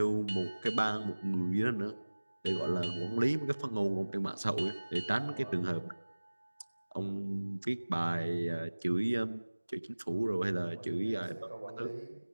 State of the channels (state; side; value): inverted; both; correlation -1.00